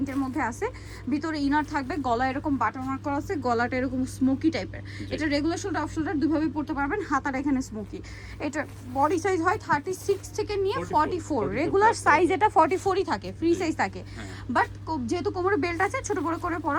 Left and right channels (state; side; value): identical; both; correlation 1.00